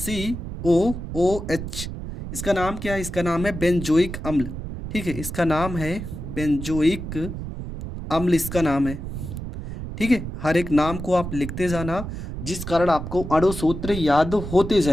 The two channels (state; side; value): noise; right; rumble, 7 dB below the sound